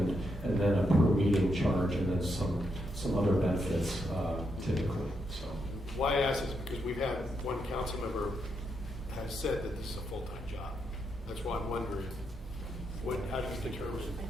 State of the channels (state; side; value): normal; both; correlation 0.81